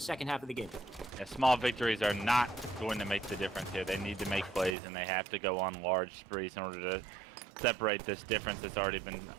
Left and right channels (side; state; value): left; drops out; at 4.8 s